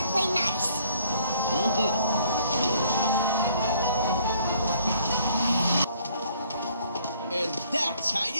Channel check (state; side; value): inverted; both; correlation -0.61